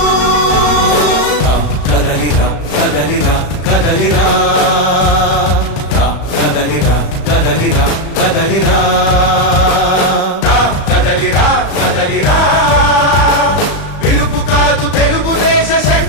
కదలిరా కదలిరా కదలిరా కదలిరా కదలిరా కదలిరా కదలిరా కదలిరా పిలుపు కాదు తెలుగుదేశ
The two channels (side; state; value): right; late; 35 ms